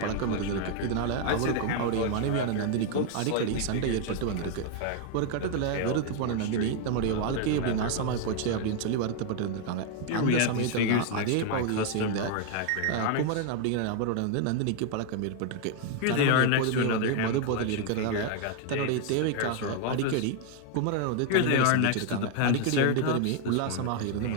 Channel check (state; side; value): different; both; correlation 0.00